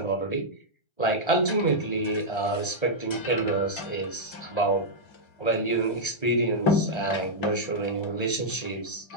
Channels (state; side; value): late; right; 1.3 ms